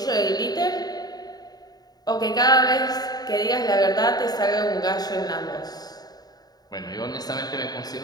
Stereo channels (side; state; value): right; late; 0.19 ms